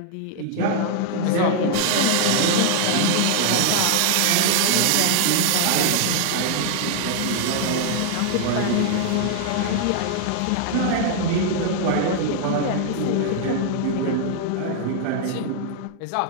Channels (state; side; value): different; both; correlation 0.00